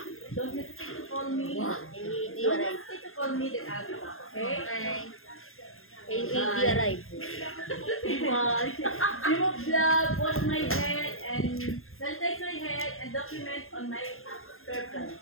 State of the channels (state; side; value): late; right; 0.61 ms